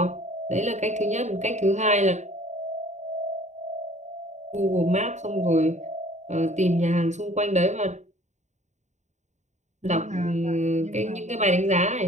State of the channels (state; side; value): late; left; 0.34 ms